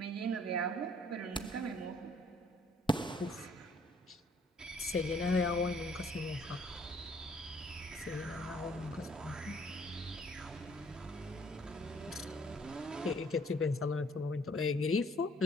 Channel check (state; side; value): normal; both; correlation 0.61